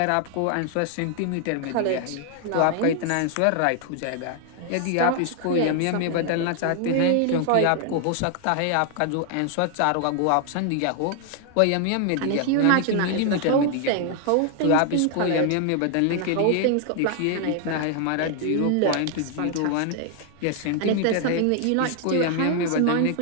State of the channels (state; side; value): different; both; correlation 0.00